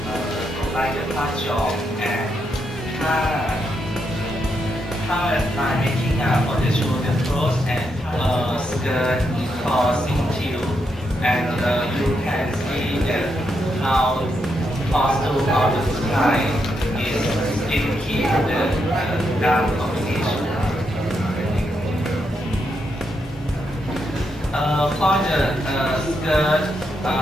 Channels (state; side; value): normal; both; correlation 0.81